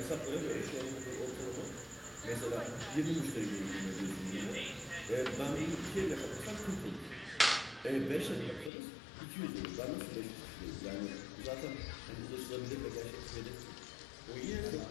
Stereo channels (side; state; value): right; drops out; at 8.7 s